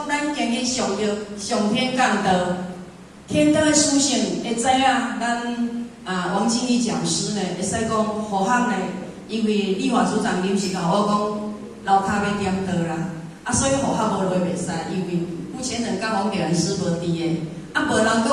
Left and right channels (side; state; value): both; identical; correlation 1.00